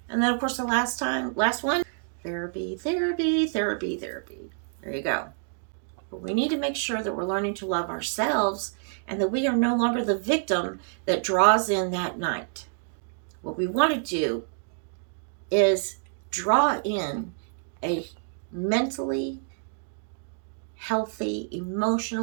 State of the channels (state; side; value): silent; left; digital silence